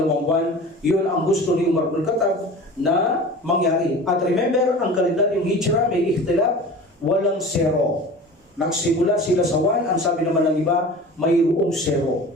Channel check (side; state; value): both; normal; correlation 0.37